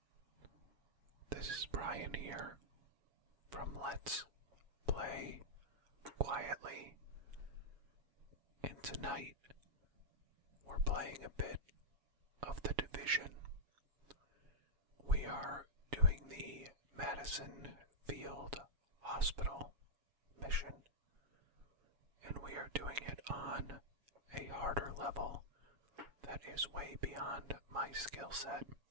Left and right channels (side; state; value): left; late; 7.2 ms